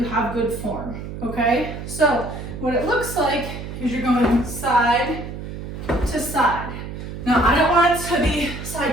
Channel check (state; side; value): noise; right; hum, 9 dB below the sound